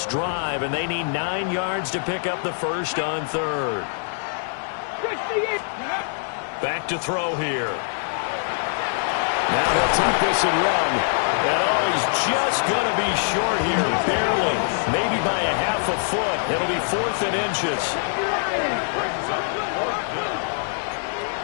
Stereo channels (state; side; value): silent; right; digital silence